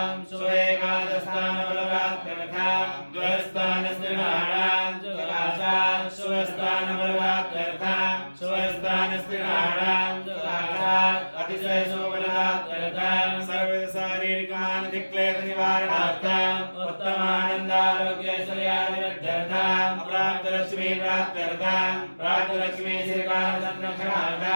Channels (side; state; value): both; inverted; correlation -1.00